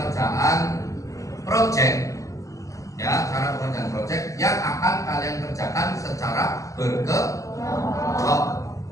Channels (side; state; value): right; late; 0.16 ms